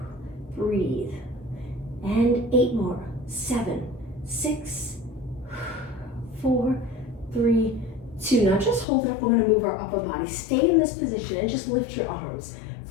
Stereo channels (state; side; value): drops out; right; at 8.8 s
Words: Breathe. And 8 more. 7, 6, 4, 3, 2. Now just hold it up. We're going to move our upper body. Stay in this position and just lift your arms.